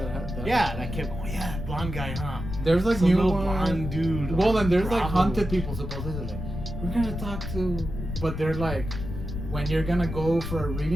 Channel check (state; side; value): noise; left; rumble, 6 dB below the sound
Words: have that. Yeah, that kept. Oh yeah, blonde guy, huh? There's like Some new little ones. blonde dude. Well, on then there's like Bravo. haunted people supposedly. Like, we're gonna talk to, but they're like, when you're gonna go for a